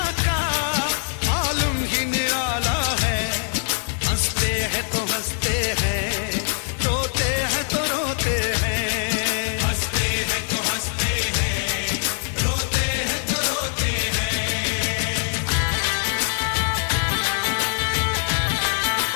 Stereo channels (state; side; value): silent; right; 63 dB below the other